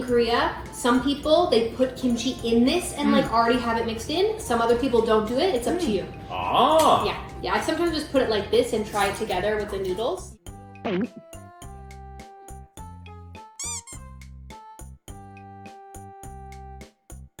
Korea, some people they put kimchi in this and like already have it mixed in. Some other people don't do it. It's up to you. Ah. Yeah. I sometimes just put it like this and try it together with the noodles.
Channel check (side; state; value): both; identical; correlation 1.00